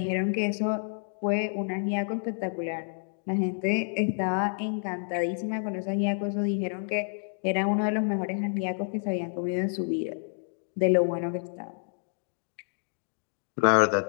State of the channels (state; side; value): silent; right; digital silence